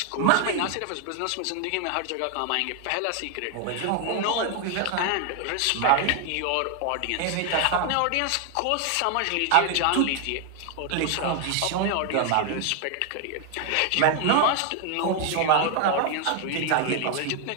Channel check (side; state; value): both; different; correlation 0.00